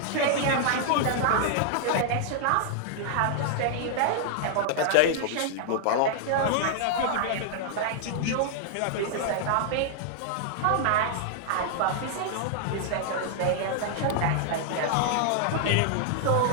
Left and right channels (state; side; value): different; both; correlation -0.01